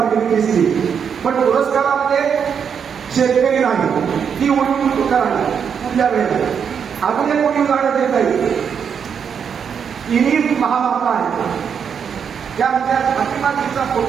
दिसली, पण पुरस्कारामध्ये शेतकरी नाही, ती उलटून राहिली. कुठल्या वेळेला अजून एक कोणी उदाहरण देता येईल. इनी महामाता आहे, त्या आमच्या फातिमाजीचा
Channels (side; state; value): left; quieter; 7.2 dB